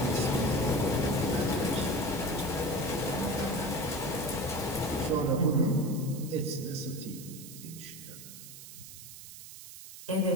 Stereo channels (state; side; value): noise; right; hiss, 14 dB below the sound